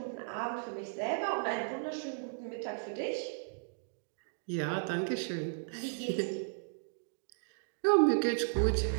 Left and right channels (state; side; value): silent; left; digital silence